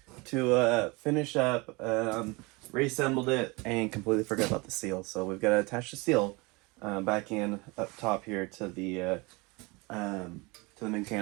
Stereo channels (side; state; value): left; quieter; 26.0 dB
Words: to finish up. Reassembled it and completely forgot about the seal. So we've got to attach the seal back in up top here to the